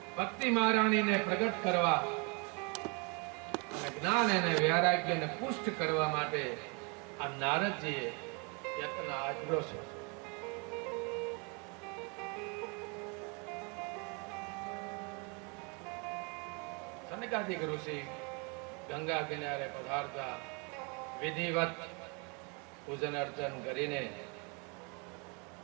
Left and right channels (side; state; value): left; quieter; 32.8 dB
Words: ભક્તિ મહારાણીને પ્રગટ કરવા અને જ્ઞાન અને વૈરાગ્યને પુષ્ટ કરવા માટે આ નારદજીએ યત્ન આચર્યો છે. સનકાદિક ઋષિ ગંગા કિનારે પધારતા વિધિવત પૂજન અર્ચન કરીને